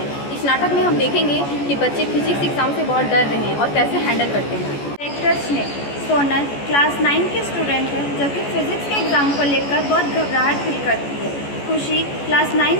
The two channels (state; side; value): late; right; 14 ms